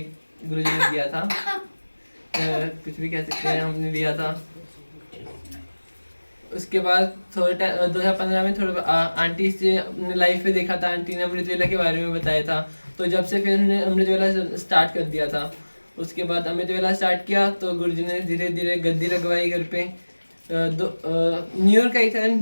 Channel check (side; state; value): both; inverted; correlation -1.00